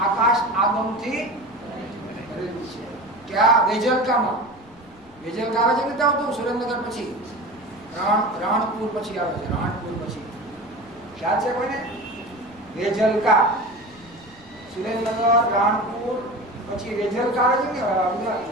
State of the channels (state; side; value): noise; left; rumble, 27 dB below the sound